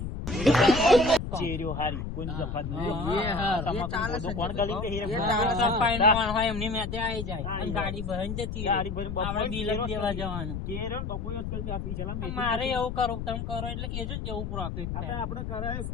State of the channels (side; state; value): left; noise; rumble, 5 dB below the sound